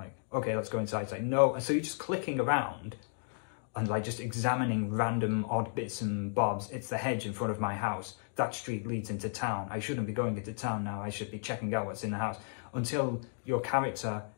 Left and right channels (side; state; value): right; silent; 55 dB below the other